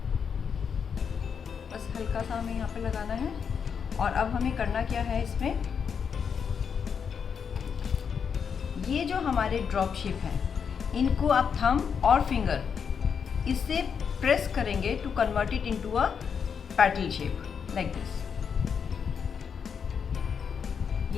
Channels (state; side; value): quieter; right; 6.7 dB